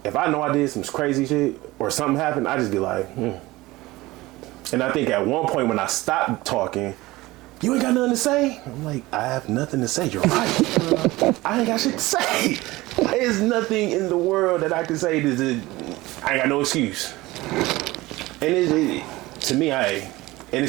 if I know I did some crazy shit or something happened, I just be like, And I think at one point when I stopped talking, you ain't got nothing to say? I'm like, I have nothing to say. You're right. I ain't got shit to say. There's nothing in the world that I can say. I ain't got no excuse. And to me, and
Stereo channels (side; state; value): left; quieter; 19.5 dB